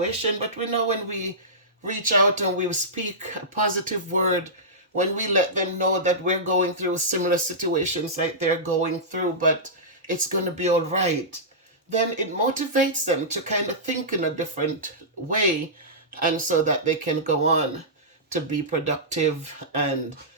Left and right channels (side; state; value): both; normal; correlation -0.16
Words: but we know when we reach out and we speak a positive word, when we let them know that we're going through similar situations like they're going through, but it's going to be all right, then it motivates them to kind of think in a different way, and so that they can go on to be productive and